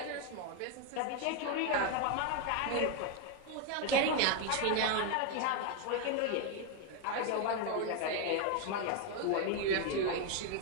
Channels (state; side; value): different; both; correlation 0.01